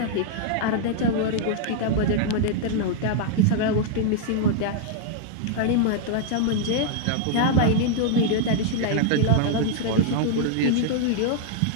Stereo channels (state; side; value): different; both; correlation 0.00